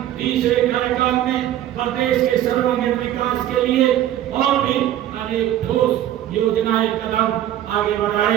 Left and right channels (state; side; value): quieter; left; 12.3 dB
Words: तीसरे कार्यकाल में प्रदेश के सर्वांगीण विकास के लिए और भी अनेक ठोस योजनाएं कदम आगे